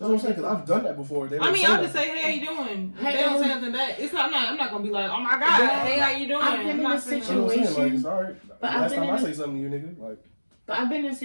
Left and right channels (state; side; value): inverted; both; correlation -1.00